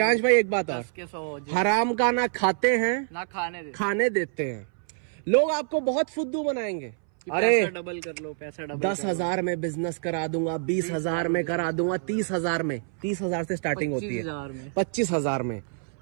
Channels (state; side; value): silent; left; 60 dB below the other